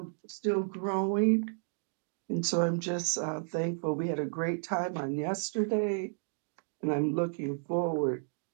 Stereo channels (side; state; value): left; silent; digital silence